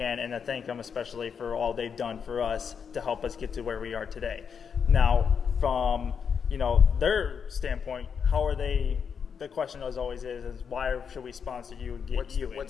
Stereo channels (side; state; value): right; quieter; 6.7 dB